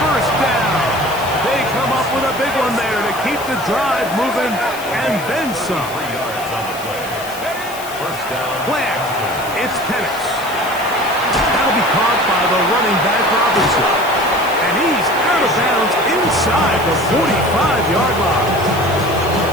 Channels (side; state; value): left; noise; hiss, 14 dB below the sound